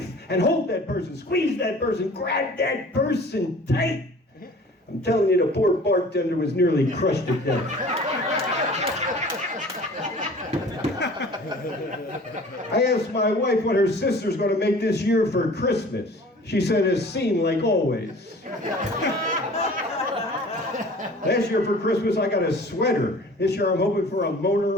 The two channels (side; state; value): both; normal; correlation 0.46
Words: and hold that person, squeeze that person, grab that person tight. I'm telling you, the poor bartender was nearly crushed to death. I asked my wife what her sister's going to make this year for Christmas. She said, a scene like always. Last year for Christmas, I got a sweater. This year, I'm hoping for a